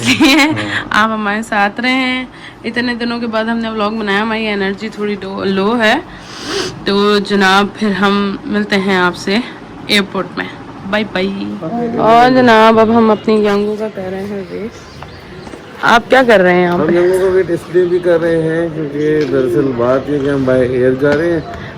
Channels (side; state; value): both; identical; correlation 1.00